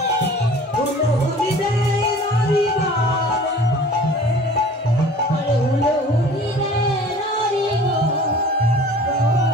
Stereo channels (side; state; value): both; normal; correlation 0.46